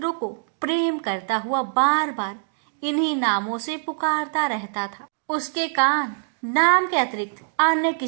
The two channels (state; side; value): silent; left; 62 dB below the other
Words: को प्रेम करता हुआ बार बार इन्हीं नामों से पुकारता रहता था। उसके कान नाम के अतिरिक्त अन्य